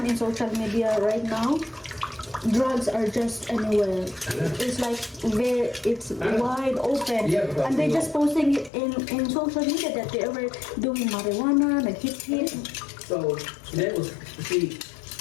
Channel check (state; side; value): drops out; right; at 8.7 s